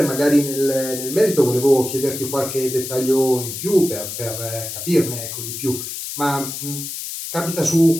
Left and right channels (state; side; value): noise; left; hiss, 7 dB below the sound